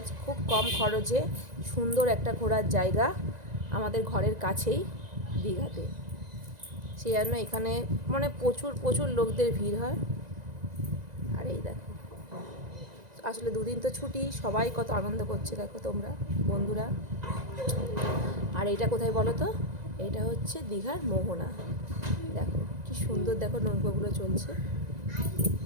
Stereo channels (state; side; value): late; left; 1.9 ms